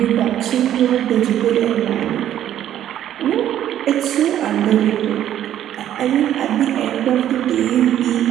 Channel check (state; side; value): quieter; left; 11.3 dB